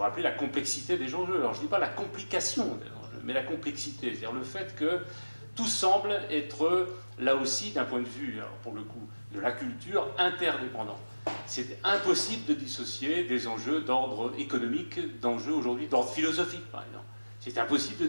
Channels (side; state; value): both; inverted; correlation -1.00